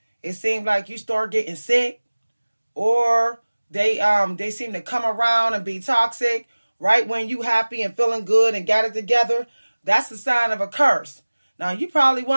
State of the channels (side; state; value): both; inverted; correlation -1.00